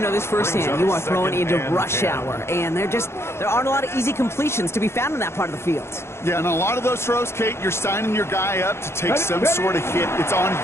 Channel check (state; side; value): late; right; 0.12 ms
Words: know this firsthand. You are throwing into rush hour, and there aren't a lot of easy completions to be found in that part of the field. Yeah, and a lot of those throws, Kate, you're signing your guy up to take some sort of hit. It's on